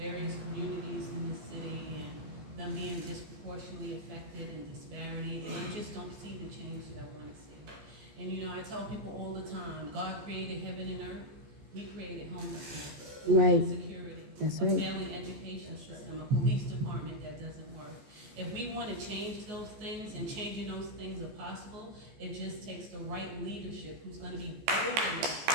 communities in the city and them being disproportionately affected and disparity, and I just don't see the change that I want to see. And you know, I tell people all the time, God created heaven and earth. He created homelessness, Right. insecurity, That's a right. failing education system, a police department that doesn't work. If we want to change those things, and changing those things are possible, it just takes the right leadership who's going to be open.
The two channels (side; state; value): left; late; 14 ms